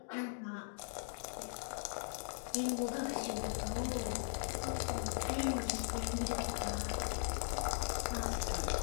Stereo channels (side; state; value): right; silent; digital silence